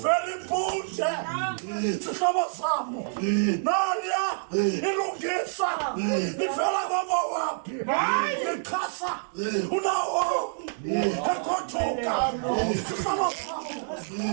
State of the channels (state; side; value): silent; left; digital silence